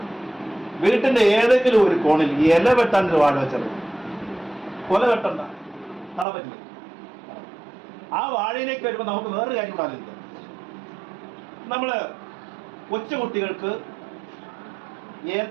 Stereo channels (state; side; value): drops out; left; at 6.2 s